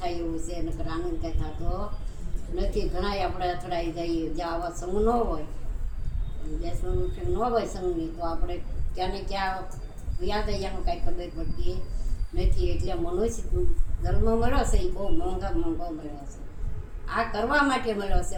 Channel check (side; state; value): both; identical; correlation 1.00